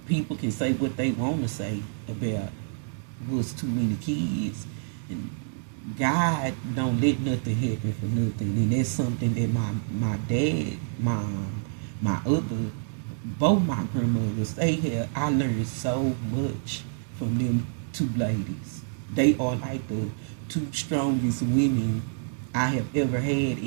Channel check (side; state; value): left; silent; digital silence